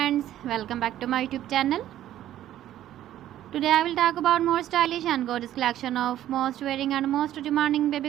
welcome back to my YouTube channel. Today I will talk about more stylish and gorgeous collection of most wearing and most demanding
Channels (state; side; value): quieter; left; 12.5 dB